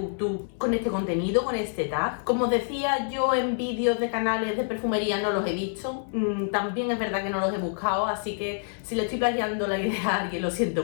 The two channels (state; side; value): silent; right; 60 dB below the other